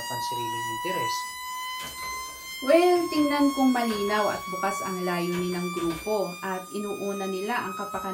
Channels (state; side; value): identical; both; correlation 1.00